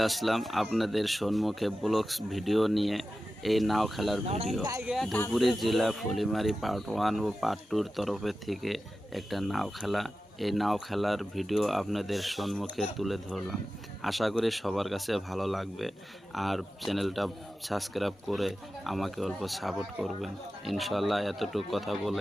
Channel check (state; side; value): normal; both; correlation 0.94